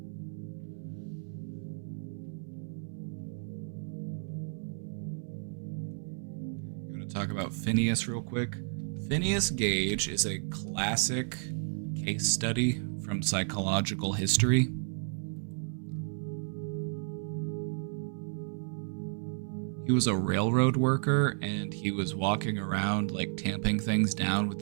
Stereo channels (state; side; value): silent; left; 56 dB below the other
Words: Talk about Phineas real quick. Phineas Gage is a classic case study from psychological history. He was a railroad worker and he was walking around like tamping things down with